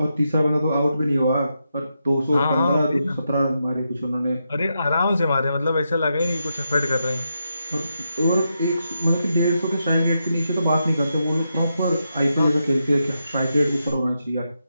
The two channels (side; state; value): both; inverted; correlation -0.84